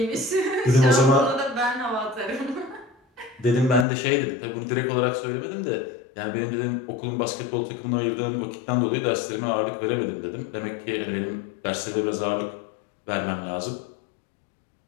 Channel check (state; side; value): drops out; right; at 3.9 s